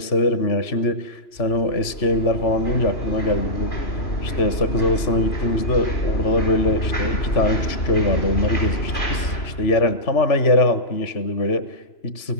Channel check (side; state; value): right; late; 3.0 ms